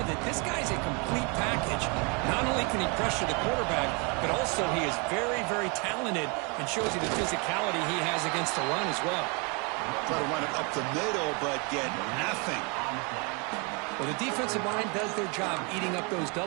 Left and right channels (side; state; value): left; quieter; 32.8 dB